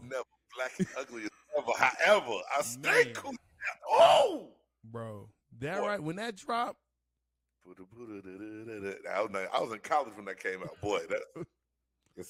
never, black and ugly as ever. However, I stay cool. Oh! Bro, that right, when that dropped. I was in college when that came out. Boy, that.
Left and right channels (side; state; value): both; identical; correlation 1.00